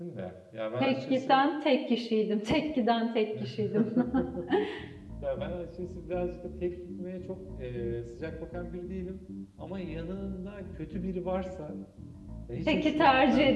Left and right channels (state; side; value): identical; both; correlation 1.00